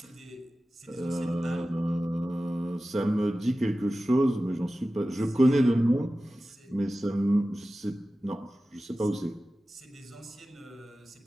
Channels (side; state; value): both; normal; correlation 0.95